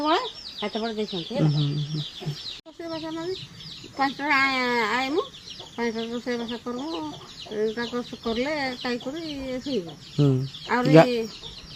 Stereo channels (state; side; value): identical; both; correlation 1.00